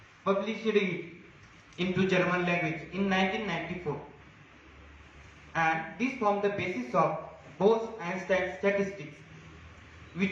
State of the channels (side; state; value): both; identical; correlation 1.00